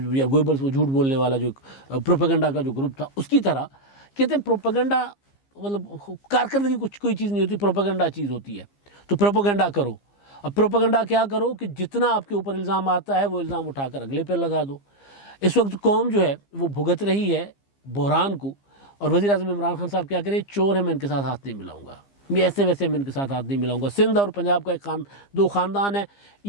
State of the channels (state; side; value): late; right; 15 ms